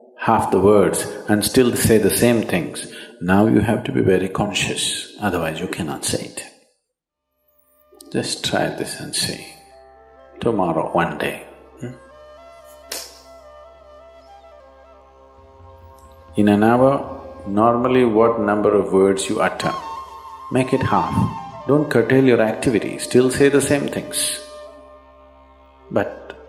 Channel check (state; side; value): identical; both; correlation 1.00